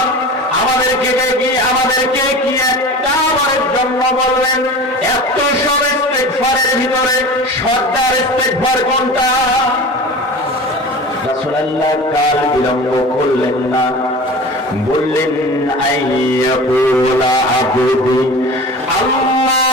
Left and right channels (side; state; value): both; normal; correlation 0.35